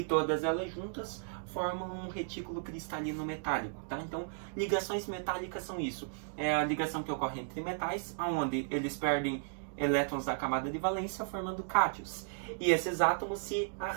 todas elas juntas formam um retículo cristalino metálico, tá? Então, ligações metálicas são isso. É a ligação que ocorre entre metais, onde eles perdem elétrons da camada de valência, formando cátions. E esses átomos se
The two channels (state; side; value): silent; left; digital silence